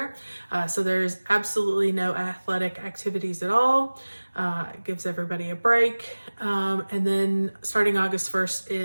So there's absolutely no athletic activities at all. It gives everybody a break. And then starting August 1st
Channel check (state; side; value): inverted; both; correlation -1.00